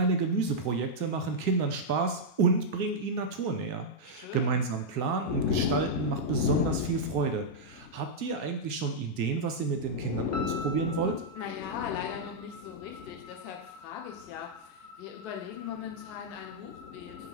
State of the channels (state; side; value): late; right; 3.6 ms